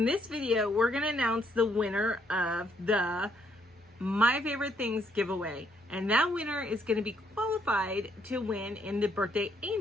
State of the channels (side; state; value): both; normal; correlation 0.71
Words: this video, we're gonna announce the winner of the My Favorite Things giveaway, and that winner is gonna be qualified to win in the Birthday